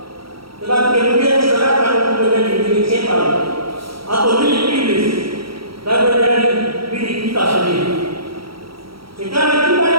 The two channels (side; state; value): left; late; 0.75 ms